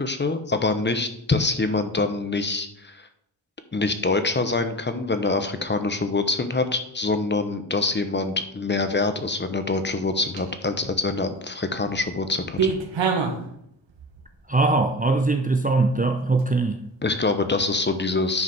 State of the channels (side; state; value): both; normal; correlation 0.30